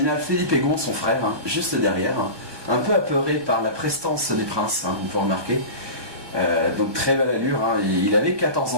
Philippe Egon, son frère, juste derrière, un peu apeuré par la prestance des princes, vous pouvez remarquer. Donc très belle allure, il avait 14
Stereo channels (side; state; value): left; late; 1.2 ms